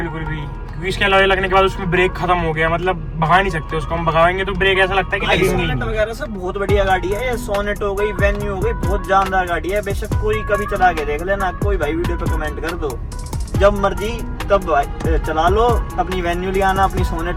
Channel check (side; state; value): both; identical; correlation 1.00